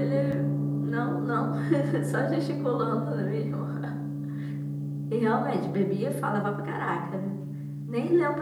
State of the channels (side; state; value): both; identical; correlation 1.00